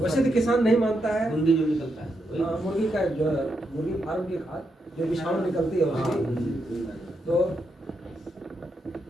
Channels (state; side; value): normal; both; correlation 0.82